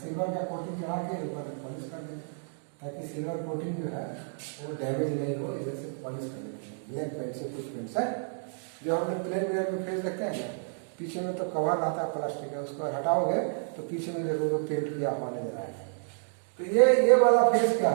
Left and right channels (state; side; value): silent; left; digital silence